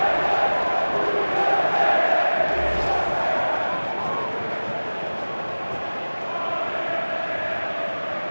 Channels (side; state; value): both; inverted; correlation -1.00